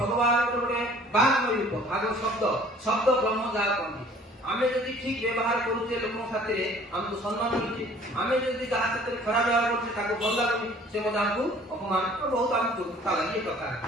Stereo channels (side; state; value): both; normal; correlation 0.53